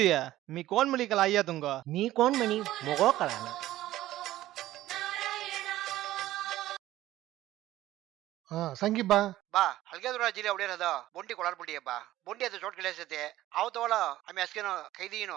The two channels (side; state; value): left; quieter; 15.0 dB